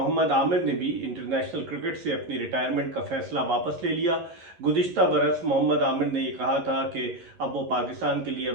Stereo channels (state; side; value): late; left; 11 ms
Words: आमिर ने भी इंटरनेशनल क्रिकेट से अपनी रिटायरमेंट का फैसला वापस ले लिया। गुज़िश्ता बरस मोहम्मद आमिर ने ये कहा था कि अब वो पाकिस्तान के लिए